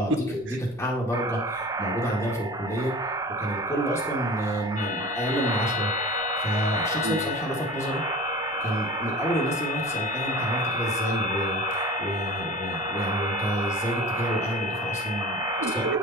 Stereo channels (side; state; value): right; noise; rumble, 25 dB below the sound